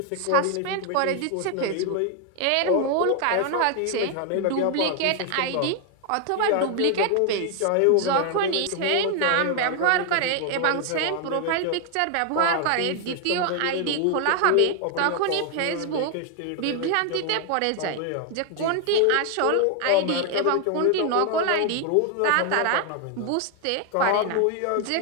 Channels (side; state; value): both; different; correlation 0.00